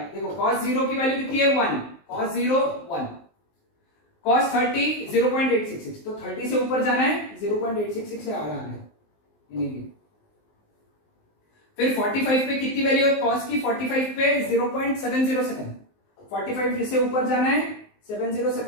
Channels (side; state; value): right; late; 19 ms